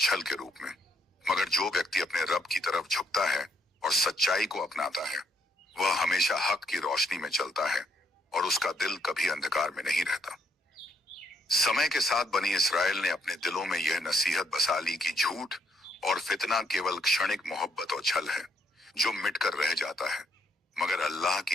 के रूप में, मगर जो व्यक्ति अपने रब की तरफ झुकता है और सच्चाई को अपनाता है वह हमेशा हक की रोशनी में चलता है, और उसका दिल कभी अंधकार में नहीं रहता। समय के साथ बनी इसराइल ने अपने दिलों में यह नसीहत बसा ली कि झूठ और फितना केवल क्षणिक मोहब्बत और छल है जो मिटकर रह जाता है, मगर अल्लाह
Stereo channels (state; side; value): normal; both; correlation 0.71